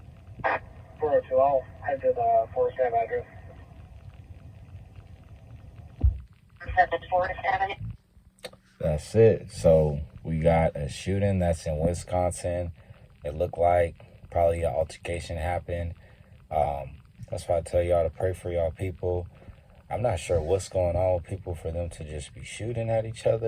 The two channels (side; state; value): both; identical; correlation 1.00